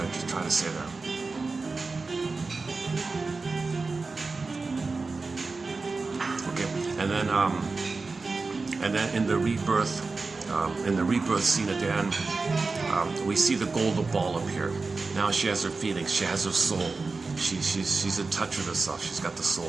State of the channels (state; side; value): quieter; left; 4.0 dB